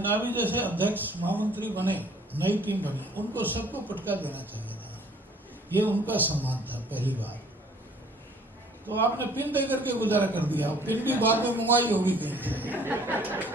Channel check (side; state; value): both; normal; correlation 0.56